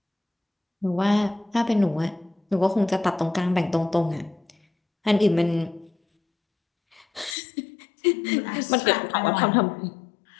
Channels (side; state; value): right; drops out; at 7.4 s